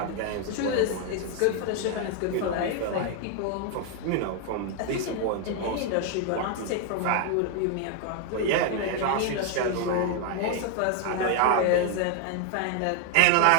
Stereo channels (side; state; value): both; different; correlation 0.00